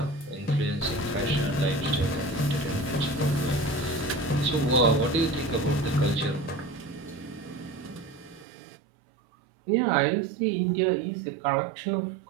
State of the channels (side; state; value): left; drops out; at 8.5 s